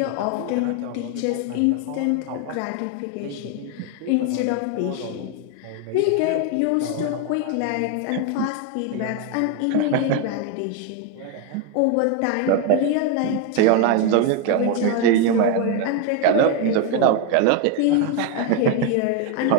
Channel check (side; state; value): both; different; correlation 0.01